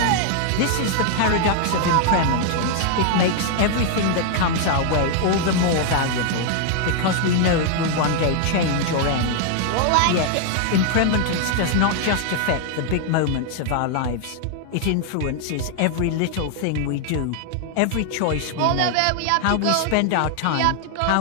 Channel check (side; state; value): both; different; correlation 0.00